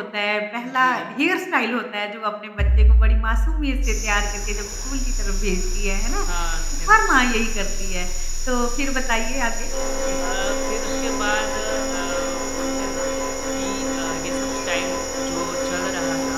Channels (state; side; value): identical; both; correlation 1.00